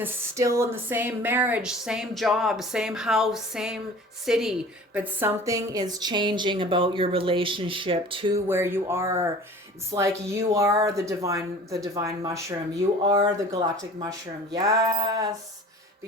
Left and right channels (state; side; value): normal; both; correlation 0.44